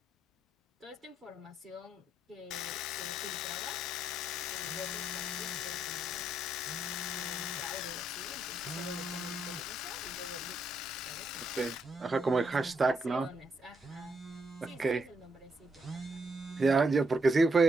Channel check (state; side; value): normal; both; correlation 0.76